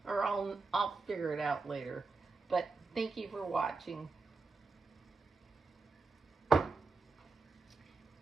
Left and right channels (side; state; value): left; quieter; 3.9 dB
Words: or I'll figure it out later. But thank you for watching.